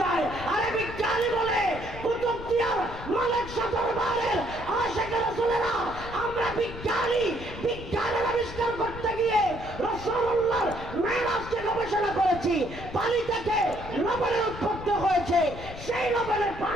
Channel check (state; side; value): noise; left; rumble, 12 dB below the sound